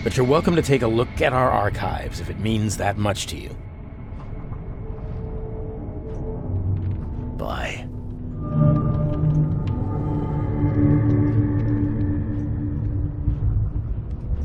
but you're welcome to take a look at our archives if it means that much to you. Bye.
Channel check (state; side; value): identical; both; correlation 1.00